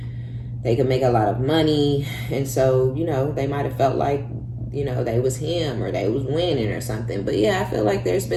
They could make a lot of money. And so, they might have felt like, they was him or they was winning or something. But yeah, I feel like there's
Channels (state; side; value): identical; both; correlation 1.00